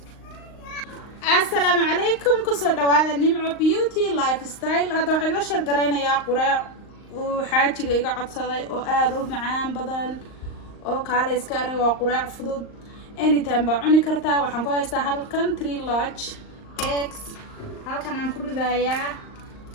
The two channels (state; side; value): late; right; 38 ms